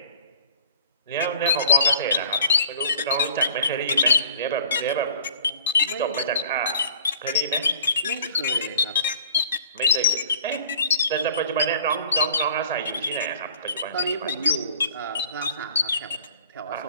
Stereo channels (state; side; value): inverted; both; correlation -0.51